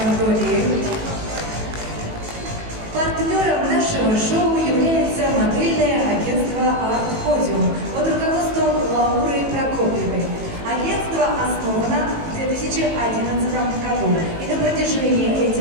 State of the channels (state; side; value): late; left; 18 ms